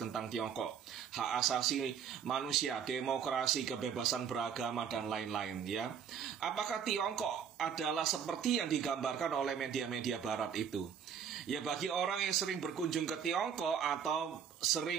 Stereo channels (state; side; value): quieter; left; 7.7 dB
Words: tentang Tiongkok, hak asasi manusia, demokrasi, kebebasan beragama dan lain-lain, ya. Apakah Tiongkok adalah seperti yang digambarkan oleh media-media Barat itu? Ya, bagi orang yang sering berkunjung ke Tiongkok atau